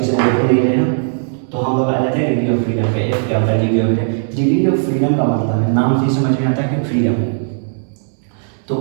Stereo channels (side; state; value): left; silent; 63 dB below the other